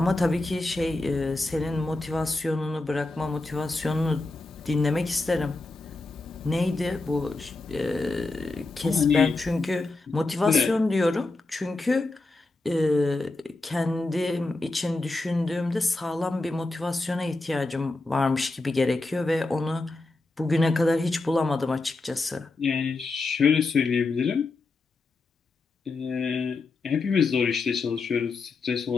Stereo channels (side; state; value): right; quieter; 3.3 dB